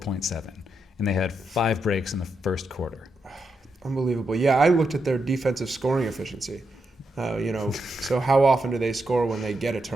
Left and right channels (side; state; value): both; normal; correlation 0.83